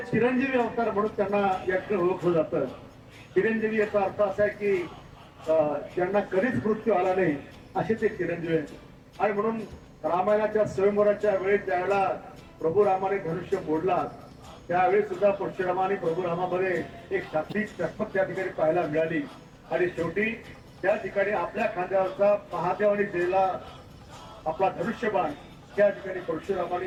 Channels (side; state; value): both; identical; correlation 1.00